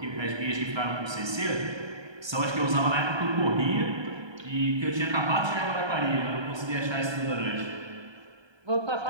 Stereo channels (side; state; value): left; late; 1.3 ms